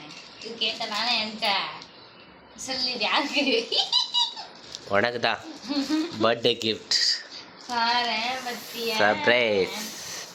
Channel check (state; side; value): identical; both; correlation 1.00